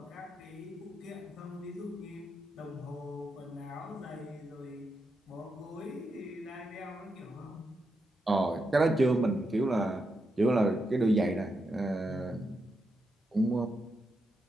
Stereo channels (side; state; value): both; normal; correlation 0.84